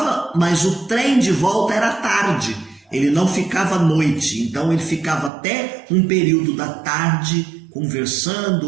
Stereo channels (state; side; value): drops out; left; at 5.3 s